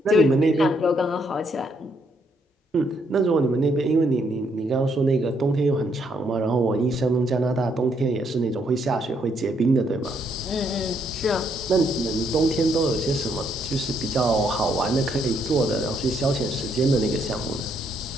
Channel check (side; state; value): both; normal; correlation 0.73